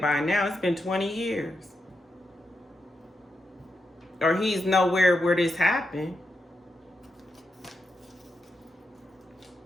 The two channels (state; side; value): normal; both; correlation 0.85